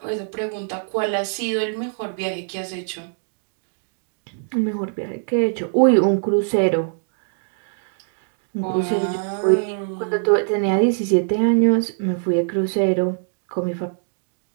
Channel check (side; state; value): left; silent; digital silence